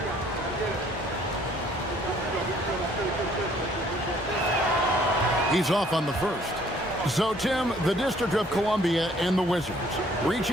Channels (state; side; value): normal; both; correlation 0.60